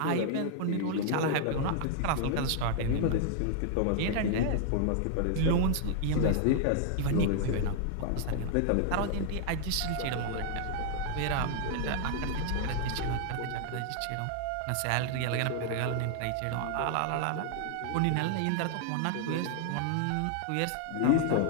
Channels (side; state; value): both; different; correlation 0.00